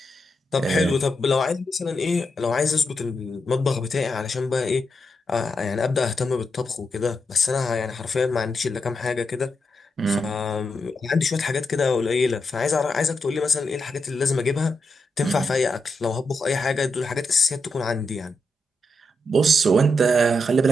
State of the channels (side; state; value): both; normal; correlation 0.84